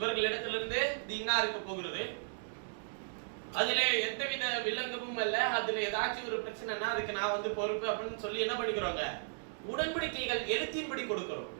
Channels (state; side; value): silent; left; 54 dB below the other